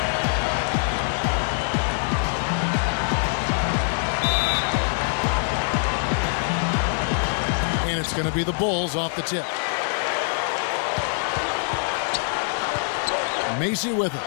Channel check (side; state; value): right; silent; 63 dB below the other